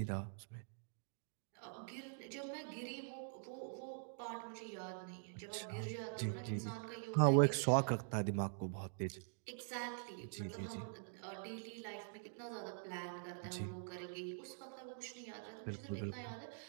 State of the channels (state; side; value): silent; left; digital silence